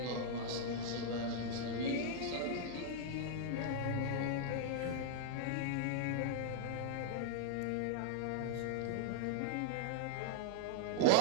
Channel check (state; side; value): different; both; correlation -0.01